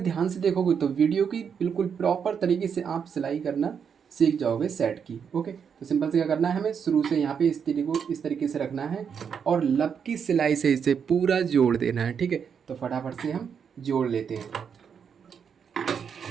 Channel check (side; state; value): left; quieter; 7.1 dB